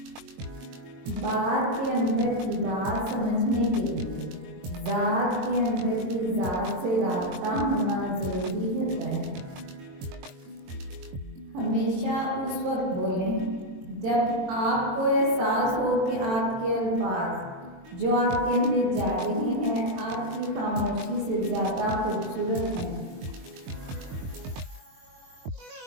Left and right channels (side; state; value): left; late; 22 ms